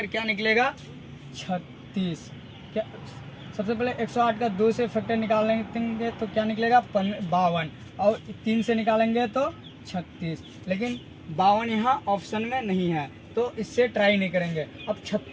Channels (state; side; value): identical; both; correlation 1.00